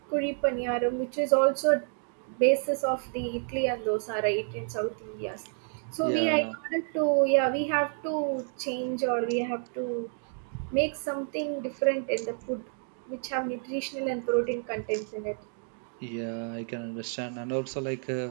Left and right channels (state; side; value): silent; left; 58 dB below the other